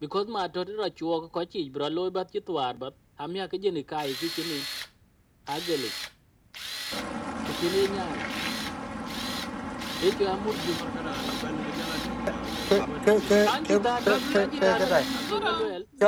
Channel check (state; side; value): identical; both; correlation 1.00